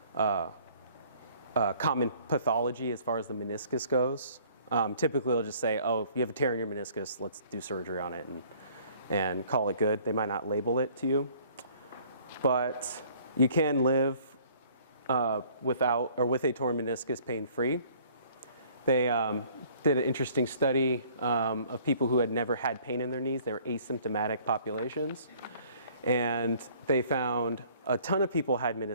pathology as far as the meniscus goes. Typically, they'll just say, oh, if you have a tear in your meniscus, let's do surgery on it and call it good. They might not label it to you. But you can live without or with a torn meniscus pain-free. They did an interesting study of people who had never had pain in their knees. They were asymptomatic populations. And they found a ton of people had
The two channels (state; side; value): inverted; both; correlation -0.56